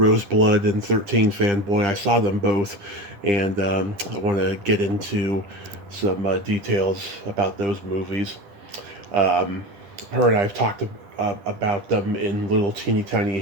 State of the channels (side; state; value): left; late; 10 ms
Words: and 13 Fanboy. I saw them both, and I want to get into some details about those movies. Her and I have talked about them in little teeny tiny